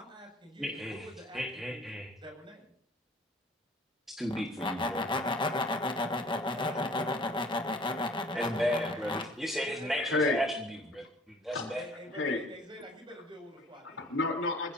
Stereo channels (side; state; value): both; normal; correlation 0.51